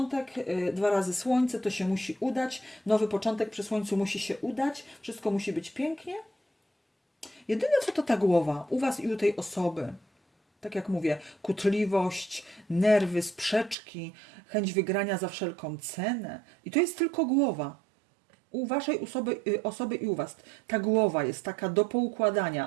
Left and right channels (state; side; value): drops out; left; at 13.8 s